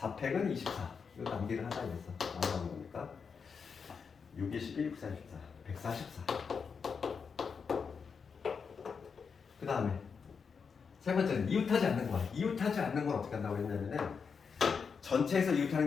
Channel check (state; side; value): quieter; right; 5.8 dB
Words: 24. 이거 남기를 하자 이랬어. 나오는 거니까 6, 12, 6, 4, 14. 144. 그 다음에 세 번째는 이웃하지 않는 거. 이웃하지 않는 건 어떻게 한다고 했냐면은 전체에서